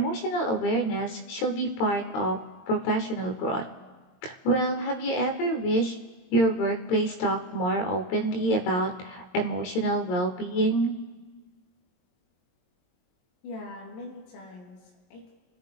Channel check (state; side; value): late; right; 22 ms